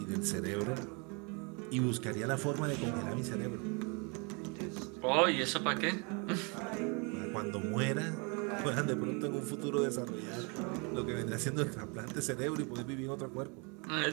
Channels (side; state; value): left; quieter; 32.6 dB